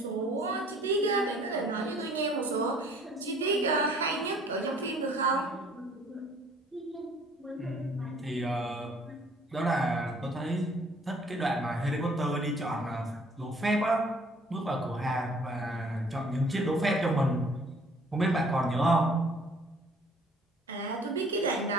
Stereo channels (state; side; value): normal; both; correlation 0.56